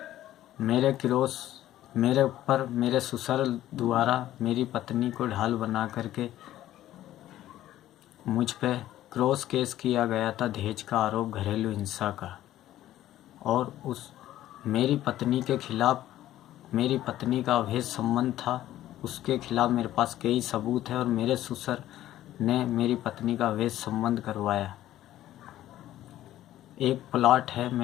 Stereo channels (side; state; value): right; quieter; 13.6 dB